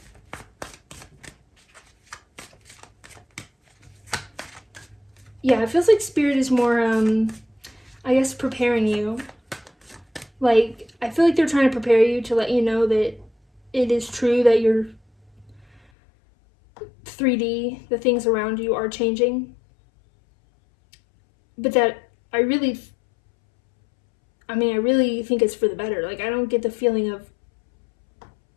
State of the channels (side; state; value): right; drops out; at 15.8 s